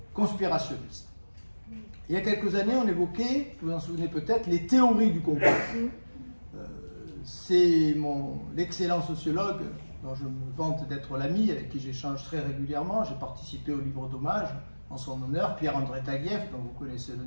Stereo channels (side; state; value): both; inverted; correlation -1.00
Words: conspirationnistes. Il y a quelques années, on évoquait, vous vous en souvenez peut-être, les théories du complot. C'est l'excellent sociologue, dont je me vante d'être l'ami, avec qui j'échange très régulièrement, j'ai participé au livre d'hommage en son honneur, Pierre-André Taguieff, dont vous connaissez le